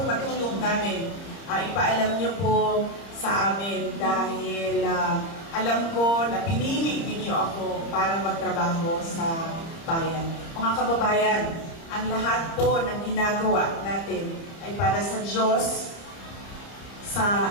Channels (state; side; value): late; right; 30 ms